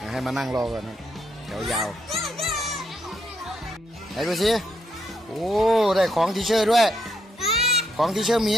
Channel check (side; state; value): both; normal; correlation 0.77